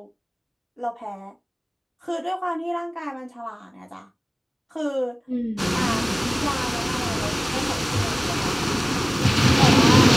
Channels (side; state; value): both; identical; correlation 1.00